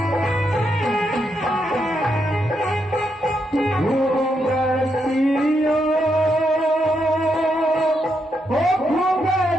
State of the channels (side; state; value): both; normal; correlation 0.81